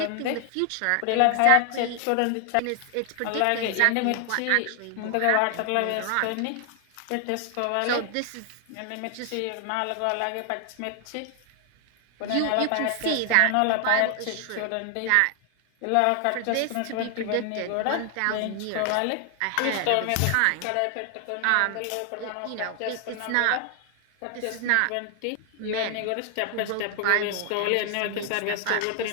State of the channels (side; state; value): both; different; correlation 0.00